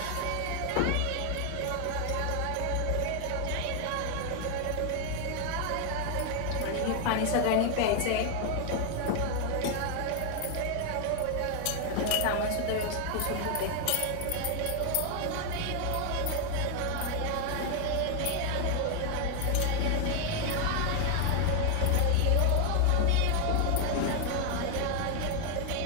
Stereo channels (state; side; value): different; both; correlation 0.00